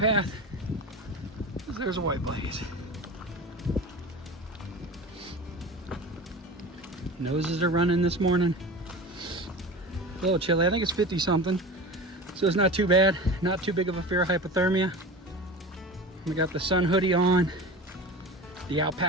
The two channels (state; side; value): normal; both; correlation 0.32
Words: There's a white blaze. Noses are running this morning. A little chilly. I think it's 50 something. So it's not too bad. Not too big of a fear of hypothermia. We got the sun hoodie on. The